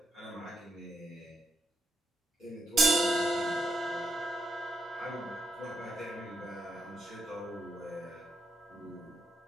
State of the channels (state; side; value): normal; both; correlation 0.78